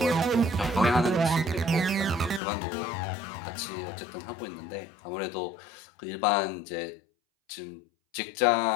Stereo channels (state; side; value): drops out; right; at 2.4 s